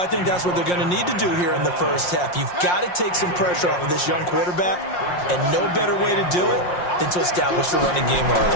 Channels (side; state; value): right; late; 5.6 ms